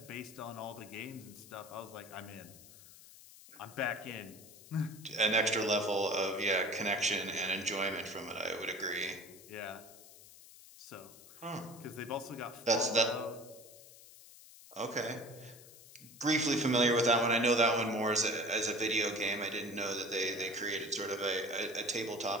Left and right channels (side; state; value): left; noise; hiss, 20 dB below the sound